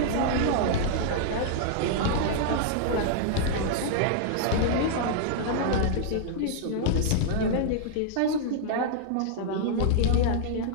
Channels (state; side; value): different; both; correlation -0.01